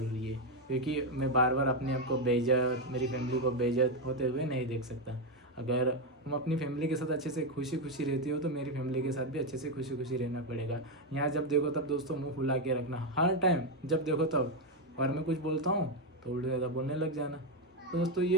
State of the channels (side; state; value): both; normal; correlation 0.06